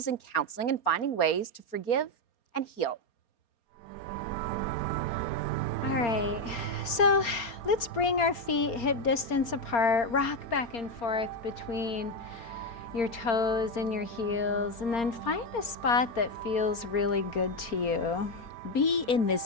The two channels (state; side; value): late; right; 4.3 ms